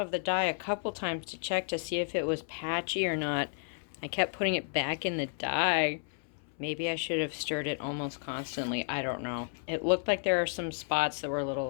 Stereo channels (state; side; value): silent; right; 56 dB below the other